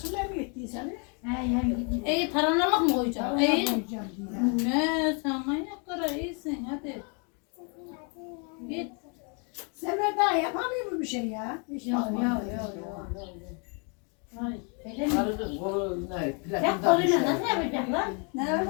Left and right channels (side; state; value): right; quieter; 36.9 dB